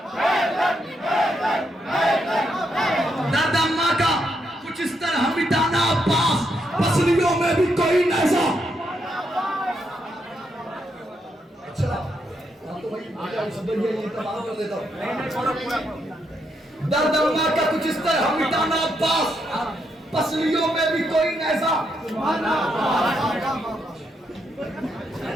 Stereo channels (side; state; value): both; normal; correlation 0.79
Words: दरदम्मा का कुछ इस तरह मिटाना अब्बास, पसलियों में भी कोई नैज़ा। ये तबाह कर देता हूँ। दर्द का कुछ इस तरह मिटाना अब्बास, पसलियों में भी कोई नैजा,